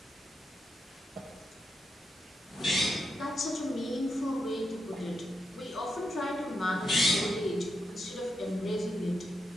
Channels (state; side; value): normal; both; correlation 0.84